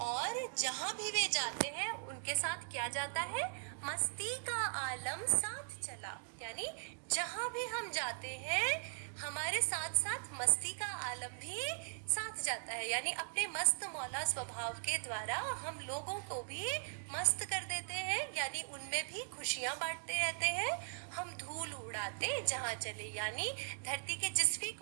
जहाँ भी वे जाते हैं उनके साथ क्या जाता है? मस्ती का आलम साथ चला, यानी जहाँ भी हम जाते हैं हमारे साथ साथ मस्ती का आलम भी साथ जाता है। यानी अपने मस्त मौला स्वभाव के द्वारा हम लोगों को भी मस्त कर देते हैं, यानी उनमें भी खुशियां बांटते रहते हैं। हम धूल उड़ाते जहाँ चले, यानी धरती के जिस भी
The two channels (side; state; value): left; silent; digital silence